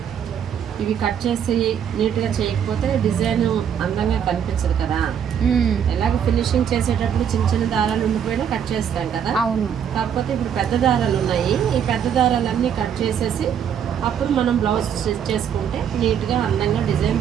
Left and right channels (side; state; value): left; quieter; 8.5 dB